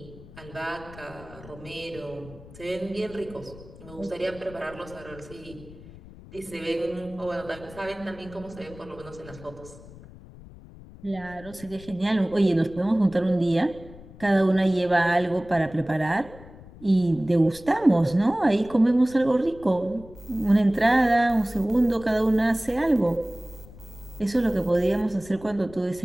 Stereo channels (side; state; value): left; noise; rumble, 19 dB below the sound